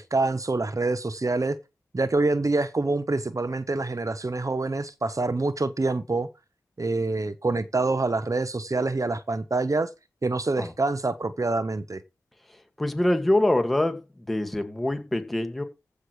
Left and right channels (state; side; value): normal; both; correlation 0.87